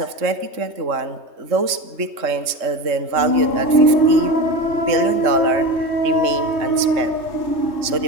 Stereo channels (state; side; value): late; left; 3.2 ms